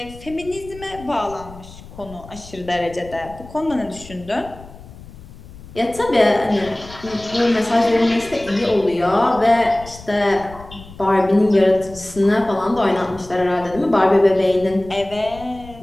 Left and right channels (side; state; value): left; noise; rumble, 18 dB below the sound